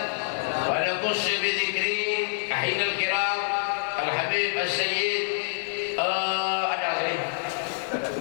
wa naqus bi dzikri ahinal kiram al-habib as-sayyid ada sini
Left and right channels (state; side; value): silent; right; digital silence